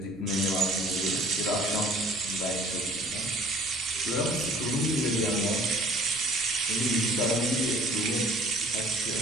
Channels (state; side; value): noise; right; rumble, 24 dB below the sound